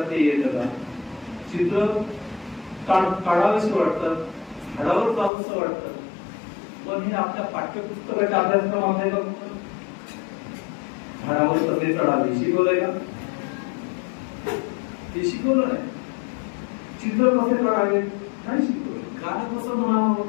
ते येतं का, चित्र काढावंसं वाटतं, झाडावर जावंसं वाटतं, पण हे आपल्या पाठ्यपुस्तकाच्या अभ्यासक्रमात आहे का? झाडावर कसे चढावे शिकवलंय का? ते शिकवलं नाही. चित्र कसे काढावे नाही शिकवलं. गाणं कसं म्हणावं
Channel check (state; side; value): drops out; right; at 5.3 s